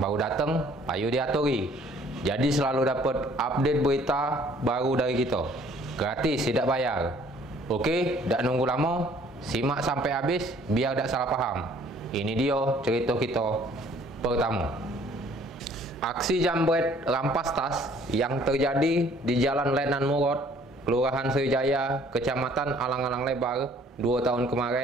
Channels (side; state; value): both; normal; correlation 0.57